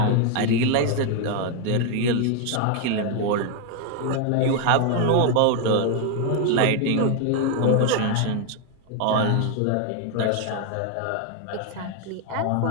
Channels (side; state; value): both; different; correlation 0.01